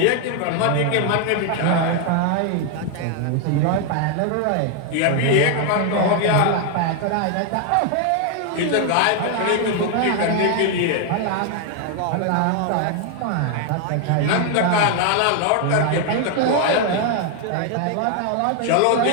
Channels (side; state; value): both; different; correlation 0.00